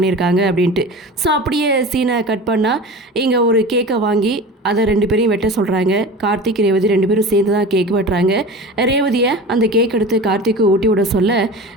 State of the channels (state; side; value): normal; both; correlation 0.34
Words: அப்படின்ட்டு. ஸோ அப்படியே சீனை கட் பண்ணால் இங்கே ஒரு கேக்கை வாங்கி அதை 2 பேரையும் வெட்ட சொல்கிறாங்க. கார்த்திக் ரேவதி 2 பேரும் சேர்ந்து தான் கேக் வெட்டுறாங்க. ரேவதியை அந்த கேக் எடுத்து கார்த்திக்கு ஊட்டி விட சொல்ல